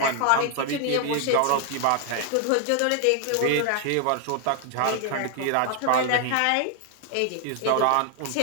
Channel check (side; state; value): both; different; correlation 0.00